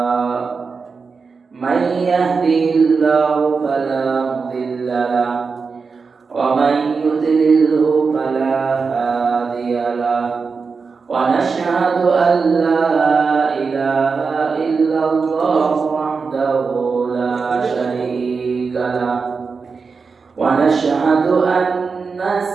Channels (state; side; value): quieter; left; 4.9 dB